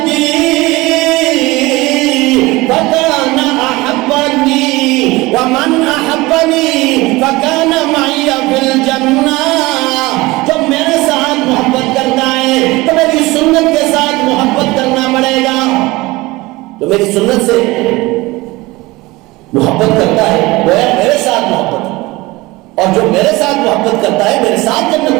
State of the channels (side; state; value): left; quieter; 21.2 dB